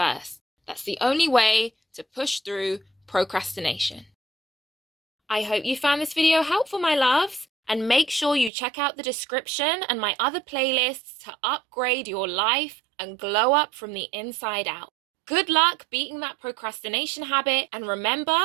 That's the only way to push through procrastination. I hope you found this video helpful, my loves, and make sure you check out the description and my other playlists to upgrade your life and glow up from the inside out. Good luck beating that procrastination habit, and remember,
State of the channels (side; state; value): left; drops out; at 8.5 s